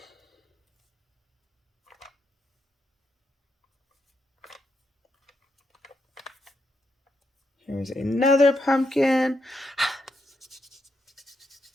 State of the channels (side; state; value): both; normal; correlation 0.81